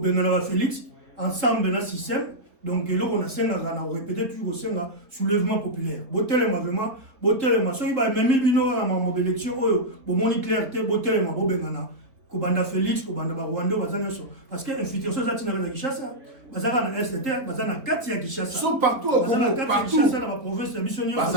na Félix ensemble na système. Donc là on a senga na répéter toujours senga soulèvement populaire. Botelema vraiment botelema so iba même bino na ma élection oyo bo moni clarté botelema bo bengana ko banda Félix ko banda ba Rwanda bazana so parce que infiltration ça tina na Kinshasa bazana na ST bazana kati ya Kinshasa so partout au Congo partout Kinshasa na province ya missionnaire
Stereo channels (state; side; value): late; left; 3.7 ms